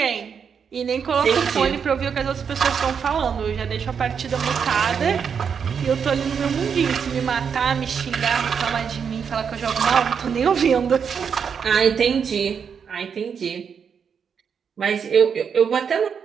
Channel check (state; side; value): quieter; left; 6.8 dB